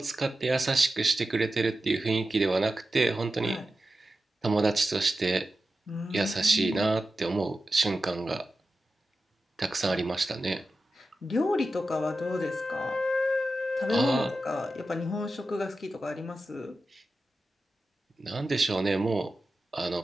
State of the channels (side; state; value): both; normal; correlation 0.92